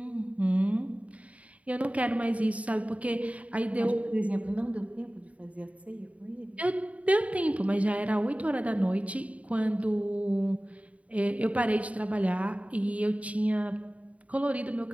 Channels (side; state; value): left; late; 0.067 ms